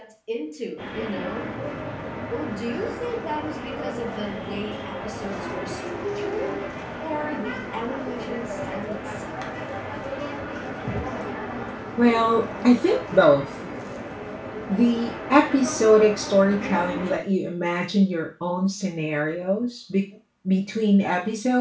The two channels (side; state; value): both; identical; correlation 1.00